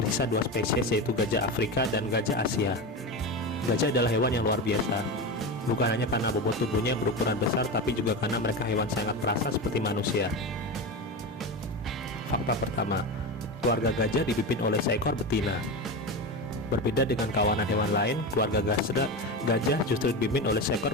dua spesies, yaitu gajah Afrika dan gajah Asia. Gajah adalah hewan yang luar biasa, bukan hanya karena bobot tubuhnya yang berukuran besar, tapi juga karena mereka hewan sangat perasa seperti manusia. Fakta pertama, keluarga gajah dipimpin oleh seekor betina. Berbeda dengan kawanan hewan lain, keluarga gajah justru dipimpin oleh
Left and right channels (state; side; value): normal; both; correlation 0.21